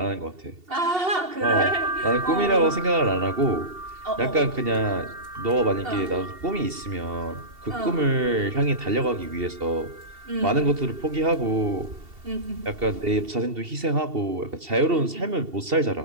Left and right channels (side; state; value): left; late; 2.7 ms